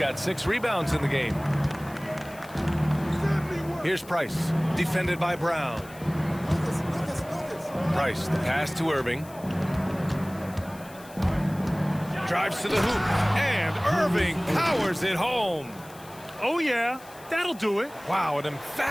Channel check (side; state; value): left; noise; hiss, 21 dB below the sound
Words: 6 rebounds in the game. Here's Price, defended by Brown. Price, the pass to Irving. Drives to the hoop, and Irving powers it home. Oh, yeah, that'll do it. Wow, an